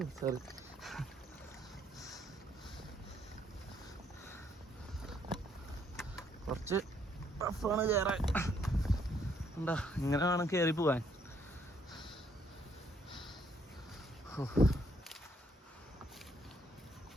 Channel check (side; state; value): both; normal; correlation 0.69